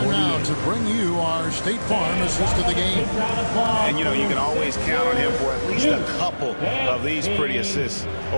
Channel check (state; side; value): inverted; both; correlation -1.00